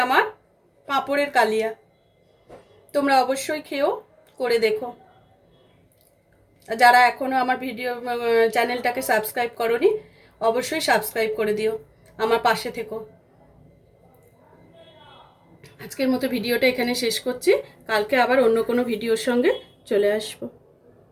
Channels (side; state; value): both; identical; correlation 1.00